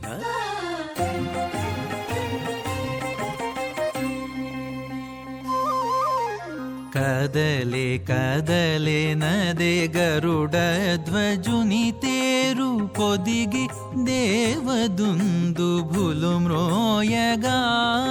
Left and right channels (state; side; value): identical; both; correlation 1.00